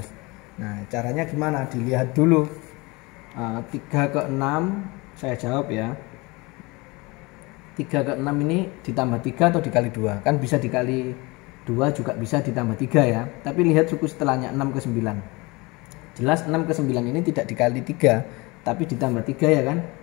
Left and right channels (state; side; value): quieter; right; 24.9 dB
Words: Nah, caranya gimana? Dilihat dulu. 3 ke 6 saya jawab ya. 3 ke 6 ini ditambah 3 atau dikali 2? Kan bisa dikali 2 juga bisa ditambah 3 ya. Tapi lihat suku setelahnya 6 ke 9. Jelas 6 ke 9 ini tidak dikali 3, tapi ditambah 3 ya kan.